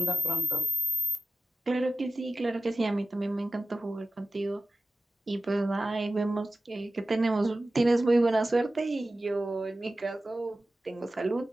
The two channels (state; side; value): normal; both; correlation 0.93